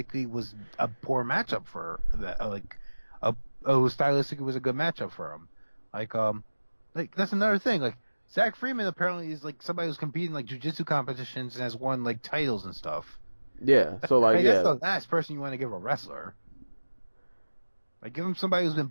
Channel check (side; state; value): both; inverted; correlation -1.00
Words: was a poor matchup for that. Who stylistically was a good matchup for him. Like that's another thing. Like Zach Freeman apparently is like somebody who's competing like jiu-jitsu competitions and has won like titles and stuff. Yeah. So like that's the last person you want to give a wrestler. Like give him somebody who's